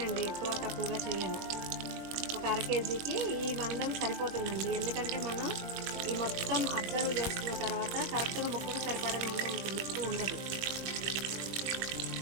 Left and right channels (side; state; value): left; late; 21 ms